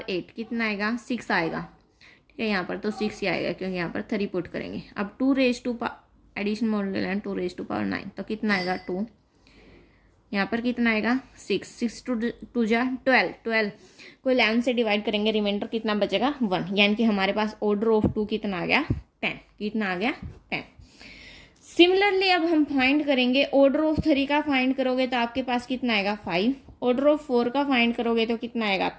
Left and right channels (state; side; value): identical; both; correlation 1.00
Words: 8 कितना आएगा, 6 आएगा। ठीक है, यहाँ पर तो 6 ही आएगा क्योंकि यहाँ पर 3 पुट करेंगे। अब 2 raise to addition modulo 11 2 raise to power 9 तो कितना आएगा, 2। यहाँ पर कितना आएगा, 6 2 जा 12, 12 को 11 से डिवाइड करेंगे, रिमाइंडर कितना बचेगा, 1। यानी कि हमारे पास ऑर्डर ऑफ 2 कितना आ गया, 10। कितना आ गया, 10। सिमिलरली अब हम फाइंड करेंगे ऑर्डर ऑफ 3 का फाइंड करोगे तो आपके पास कितना आएगा, 5। ऑर्डर ऑफ 4 का फाइंड करोगे तो कितना आएगा